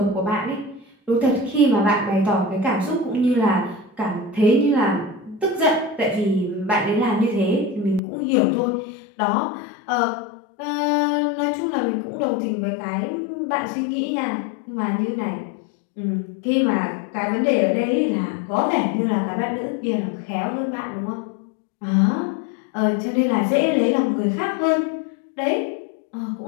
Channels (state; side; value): drops out; right; at 8.0 s